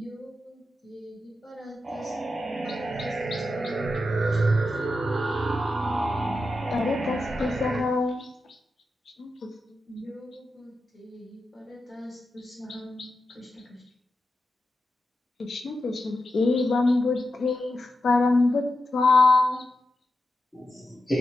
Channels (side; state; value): both; normal; correlation 0.89